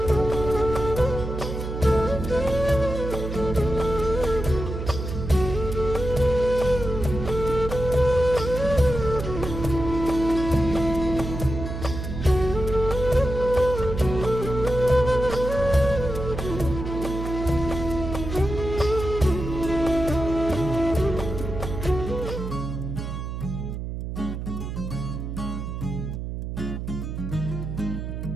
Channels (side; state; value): right; noise; hum, 6 dB below the sound